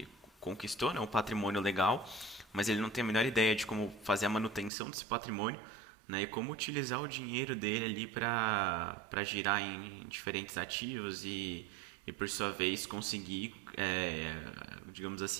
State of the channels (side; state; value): left; drops out; at 4.7 s